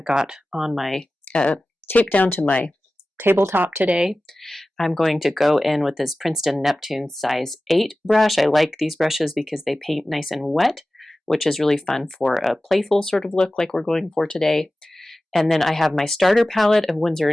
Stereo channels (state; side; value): normal; both; correlation 0.96